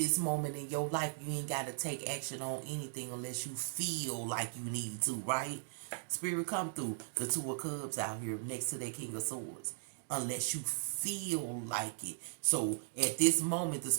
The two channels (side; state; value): left; silent; digital silence